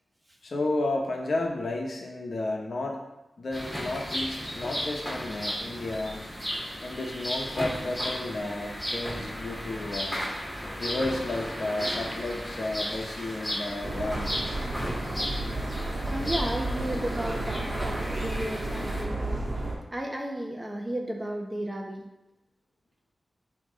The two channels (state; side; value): normal; both; correlation 0.93